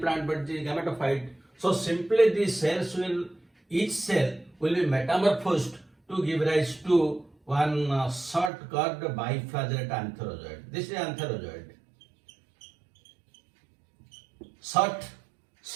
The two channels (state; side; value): drops out; left; at 8.5 s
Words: plant but the gametophyte. So simply these cells will, each cell will be metamorphosed to give rise to one short curved biflagellate antherozoid. This is antherozoid. Short